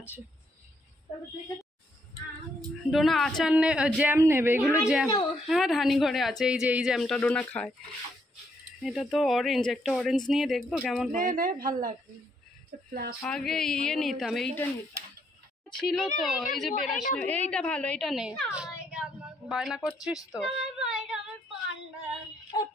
ডোনা আচার জ্যাম নেবে, এগুলো জ্যাম। হ্যাঁ ধানি ঘরে আছে, এই যে এই জ্যামটা ডোনা খায়। এটা তো অরেঞ্জ, একটা অরেঞ্জ নিয়ে দেখবো কেমন হয়। ভালো লাগবে। আগে ইয়ে নিতাম, এইটা নিতাম ছিল তো, এই যে বেরাস। এইটা ভালো, এইটা নে। বায়না করছিস তো।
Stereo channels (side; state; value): both; normal; correlation 0.74